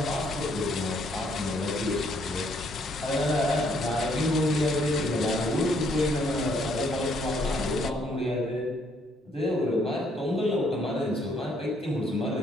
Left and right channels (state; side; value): normal; both; correlation 0.68